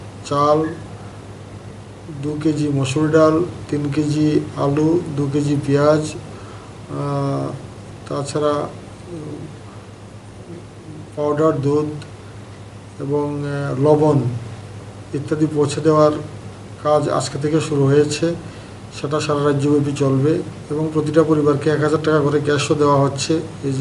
চাল, 2 কেজি মসুর ডাল, 3 কেজি আলু, 2 কেজি পেঁয়াজ, তাছাড়া পাউডার দুধ এবং লবণ ইত্যাদি পৌঁছে দেওয়ার কাজ আজকে থেকে শুরু হয়েছে। সেটা সারা রাজ্যব্যাপী চলবে এবং প্রতিটা পরিবারকে 1000 টাকা করে ক্যাশও দেওয়া হচ্ছে। এই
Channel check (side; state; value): both; identical; correlation 1.00